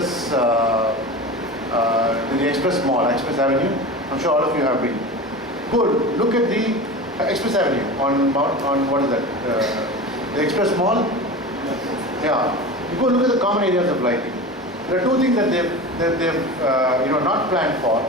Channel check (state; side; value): normal; both; correlation 0.30